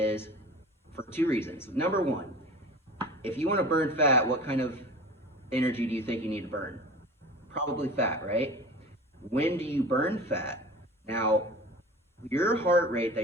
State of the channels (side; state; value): both; normal; correlation 0.38